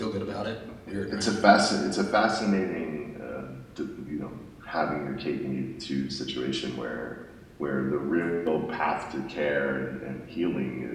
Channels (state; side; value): identical; both; correlation 1.00